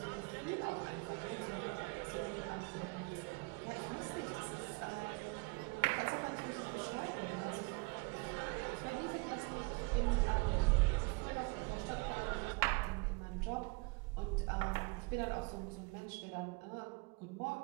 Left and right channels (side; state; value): left; quieter; 29.5 dB